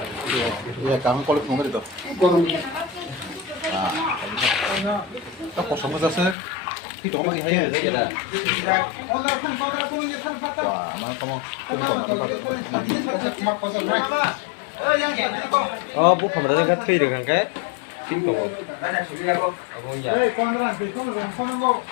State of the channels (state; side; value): drops out; right; at 6.4 s